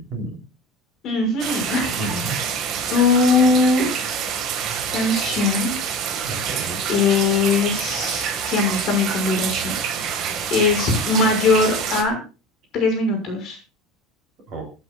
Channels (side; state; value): both; normal; correlation 0.35